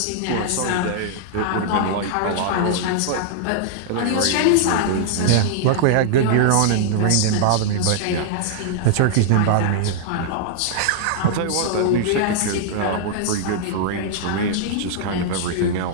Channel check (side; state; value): both; different; correlation -0.01